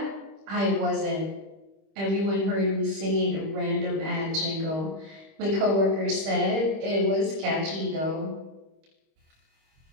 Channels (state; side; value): late; left; 25 ms